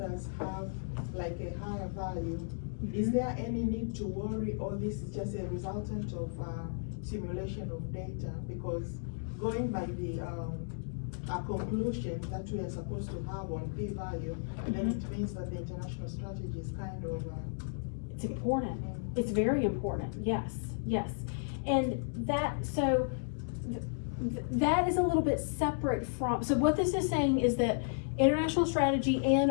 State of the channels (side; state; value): right; silent; digital silence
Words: have like a higher value, is there any need to worry, or this is just a resultant of simulation of data? Because going by the conclusion that we are supposed to have on p-value, then it means that the international strategy is kind of it's important. It's very important. Yes, yes. And that, so that is a little bit separate from, so what this is saying is that international strategy and